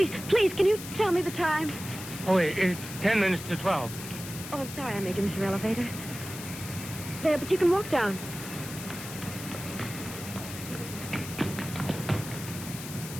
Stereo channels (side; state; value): left; noise; hiss, 11 dB below the sound